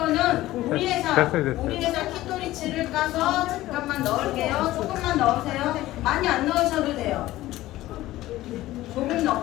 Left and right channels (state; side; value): quieter; right; 16.2 dB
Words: 우리 회사 됐어요. 우리 회사 키토리치를 까서 잠깐만 넣을게요. 조금만 넣으세요. 많이 안 넣으셔도 돼요. 조금